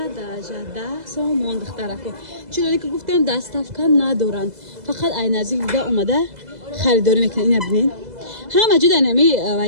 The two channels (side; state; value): left; late; 2.0 ms